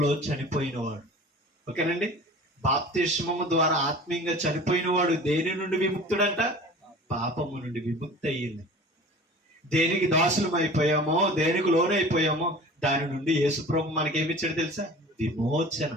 చనిపోయిన వాడు. ఓకేనండి? బాప్తిస్మము ద్వారా ఆత్మీయంగా చనిపోయిన వాడు దేని నుండి విముక్తుడంట? పాపము నుండి విముక్తి అయ్యింది. దేనికి దాసులం అయిపోయామో, దేనికి లోనైపోయామో దాని నుండి యేసుప్రభు మనకేమిచ్చాడు తెలుసా? విమోచన.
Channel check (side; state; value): both; normal; correlation 0.41